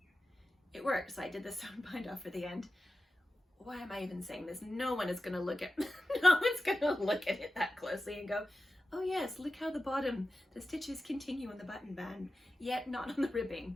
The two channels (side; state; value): both; normal; correlation 0.93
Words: it worked. So I did the sewn bind off for the end. Why am I even saying this? No one is going to look at it that closely and go, oh yes, look how the stitches continue on the button band, yet not on the